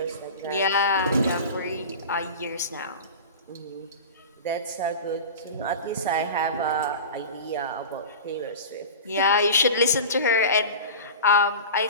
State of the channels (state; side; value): inverted; both; correlation -0.32